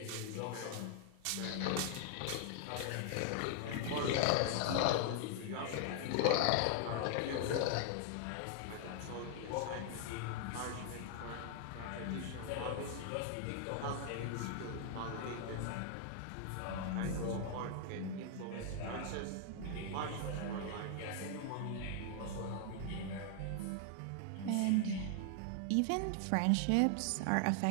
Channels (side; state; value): both; different; correlation 0.00